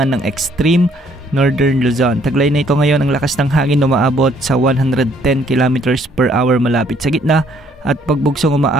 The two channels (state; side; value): normal; both; correlation 0.65